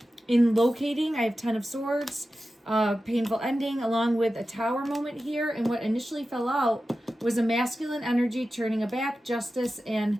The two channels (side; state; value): both; normal; correlation 0.93